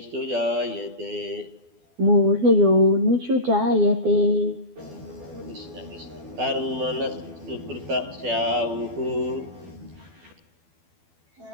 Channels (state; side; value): late; left; 12 ms